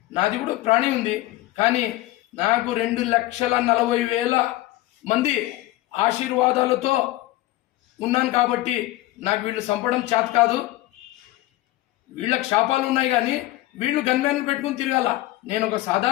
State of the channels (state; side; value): quieter; right; 17.0 dB